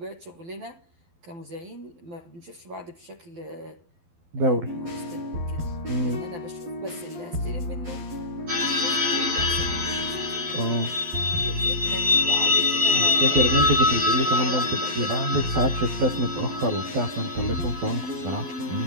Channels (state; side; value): late; left; 12 ms